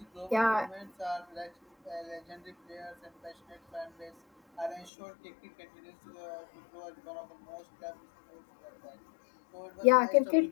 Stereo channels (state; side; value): drops out; right; at 4.9 s